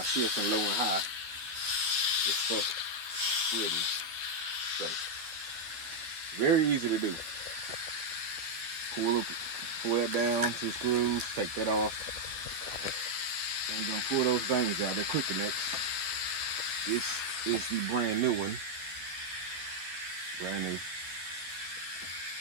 shift from low and high, it's stuck splitting. So, very easy to do. Pull that down, 2 screws, take that off. Then you're gonna pull those things out. They're quick connects. This is the brand new one. Brand new.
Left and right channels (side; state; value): left; late; 12 ms